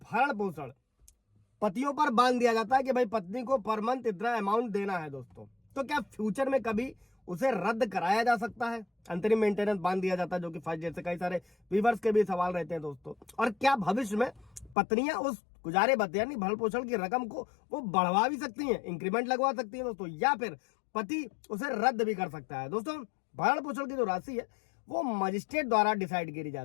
पोषण पतियों पर बांध दिया जाता है कि भाई पत्नी को पर मंथ इतना अमाउंट देना है दोस्तों, तो क्या फ्यूचर में कभी उसे रद्द कराया जा सकता है? अंतरिम मेंटेनेंस बांध दिया जाता है जो कि फर्स्ट, जैसे कई सारे व्यूअर्स के भी सवाल रहते हैं दोस्तों। और क्या भविष्य में पत्नियां उस गुजारे भत्ते यानी भरण पोषण की रकम को वो बढ़वा भी सकती हैं, इंक्रीमेंट लगवा सकती हैं दोस्तों, या फिर पति उसे रद्द भी कर सकता है? दोस्तों भरण पोषण की जो राशि है वो मजिस्ट्रेट द्वारा डिसाइड करी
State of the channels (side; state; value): right; drops out; at 14.8 s